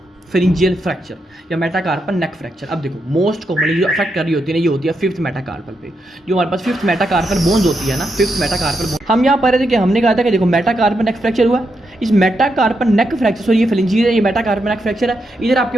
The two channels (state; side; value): normal; both; correlation 0.83